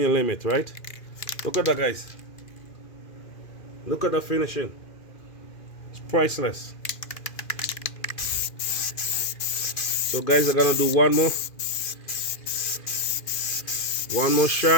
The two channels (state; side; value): late; right; 2.4 ms